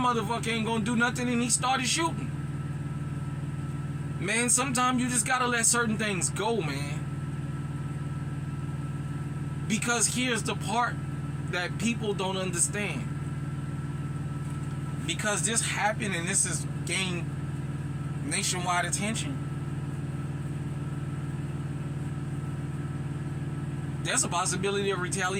ain't gonna do nothing, and he started shooting. Man, sometimes you just gotta let certain things go, man. Because here's the part that people don't understand. Because this happened and this has gained nationwide attention, there's a possibility of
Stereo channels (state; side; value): identical; both; correlation 1.00